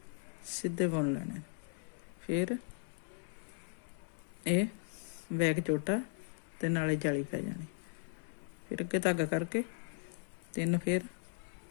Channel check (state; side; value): silent; right; 53 dB below the other